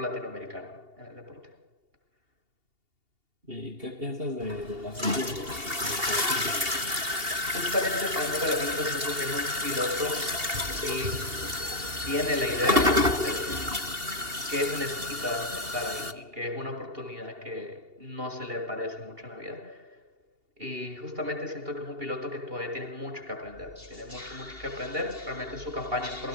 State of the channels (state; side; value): late; left; 2.8 ms